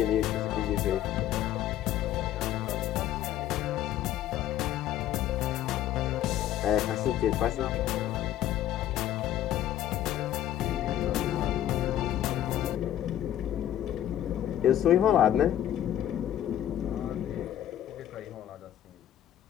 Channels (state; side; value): quieter; right; 11.8 dB